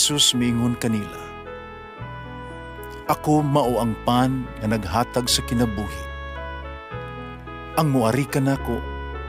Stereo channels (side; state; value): both; identical; correlation 1.00